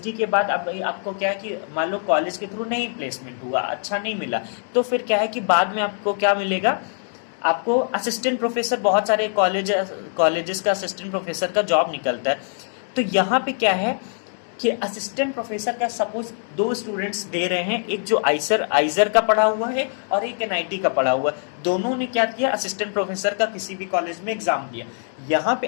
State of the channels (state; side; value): silent; right; 56 dB below the other